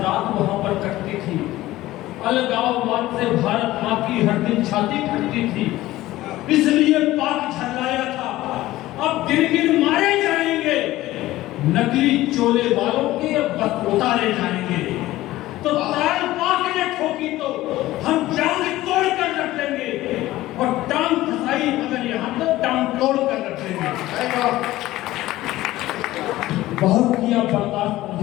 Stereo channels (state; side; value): quieter; right; 16.4 dB